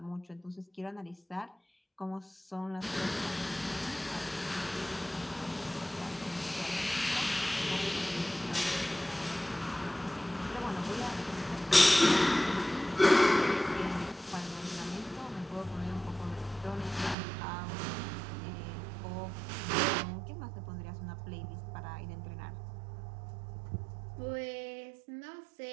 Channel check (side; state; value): left; drops out; at 17.2 s